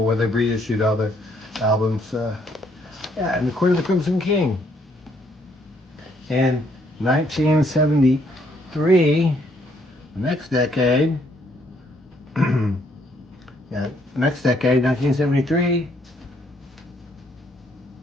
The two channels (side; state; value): both; normal; correlation 0.69